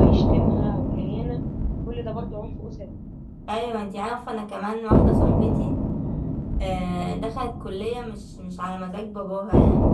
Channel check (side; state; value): both; identical; correlation 1.00